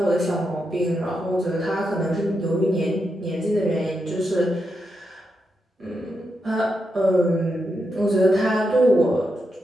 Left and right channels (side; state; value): both; normal; correlation 0.85